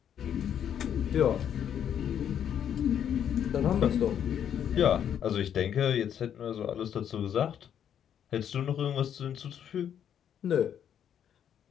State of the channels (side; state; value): right; quieter; 9.2 dB